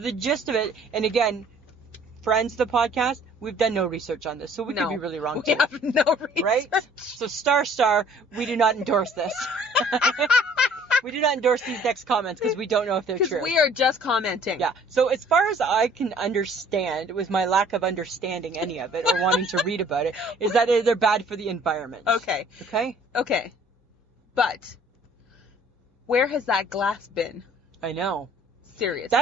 gist of it, and again, friends of the podcast, we've done no research on this, so we could be really wrong too. We have no research. Right? So star, we do not endorse this. We do not endorse these next comments because we don't know if they're true. Because we are just commenting. Yeah. So as far as I can understand, with my lack of understanding any of it or wanting to read about it, is that they're bad for the environment. Okay. Okay? But where has that glass been? I know. Seriously.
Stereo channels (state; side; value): normal; both; correlation 0.55